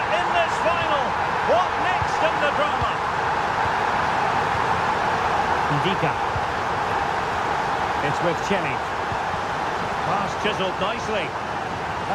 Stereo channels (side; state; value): both; identical; correlation 1.00